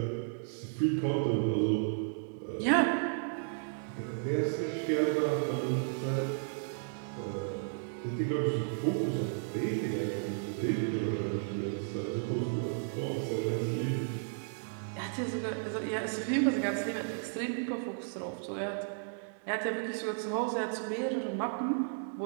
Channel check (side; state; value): left; silent; digital silence